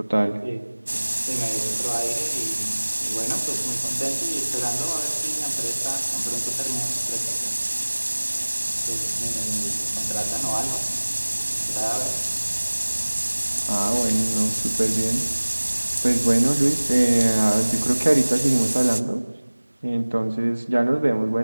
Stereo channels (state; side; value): inverted; both; correlation -1.00